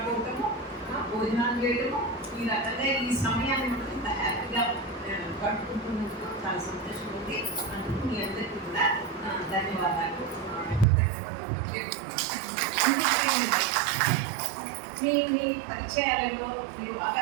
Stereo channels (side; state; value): left; drops out; at 10.9 s